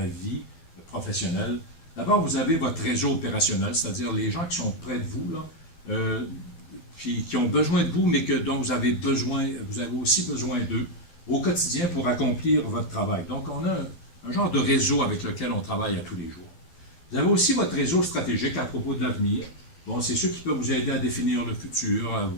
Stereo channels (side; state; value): right; late; 12 ms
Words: vie professionnelle. D'abord, vous avez votre réseau opérationnel, c'est-à-dire les gens qui sont près de vous, là, qui ont besoin de vous, mais dont vous avez aussi besoin d'eux au quotidien pour accomplir votre travail. Donc, on a un genre de réseau avec lequel on travaille à tous les jours. Vous avez aussi votre réseau stratégique à propos de l'avenir. Bon, c'est ceux qui peuvent vous aider à définir le futur, à